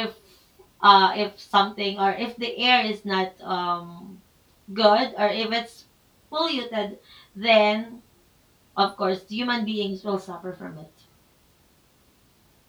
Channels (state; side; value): identical; both; correlation 1.00